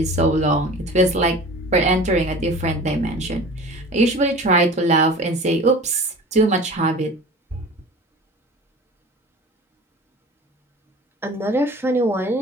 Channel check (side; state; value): both; normal; correlation 0.39